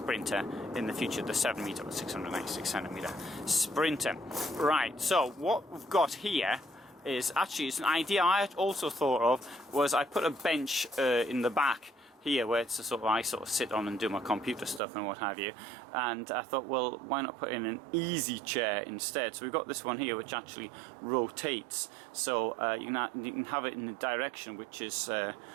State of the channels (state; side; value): drops out; left; at 14.8 s